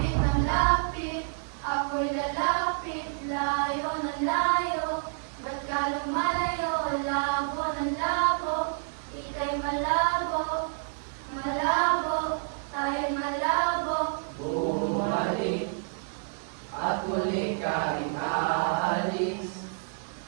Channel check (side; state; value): left; silent; digital silence